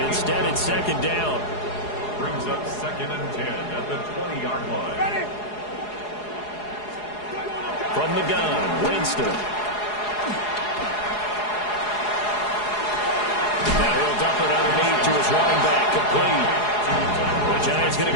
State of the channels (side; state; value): right; late; 4.8 ms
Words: Instead, it's 2nd down. Brings up 2nd and 10 at the 20-yard line. Ready? From the gun, Winston. Now he'll dump it underneath to his running back, complete. The Giants going to